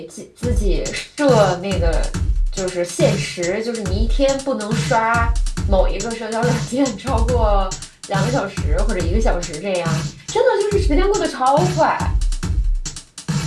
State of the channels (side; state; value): both; identical; correlation 1.00